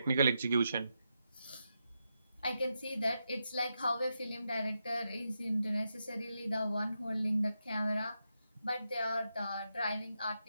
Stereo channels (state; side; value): inverted; both; correlation -0.86